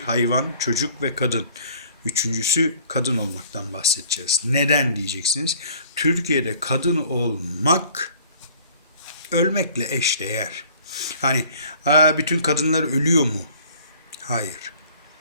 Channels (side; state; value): both; inverted; correlation -0.53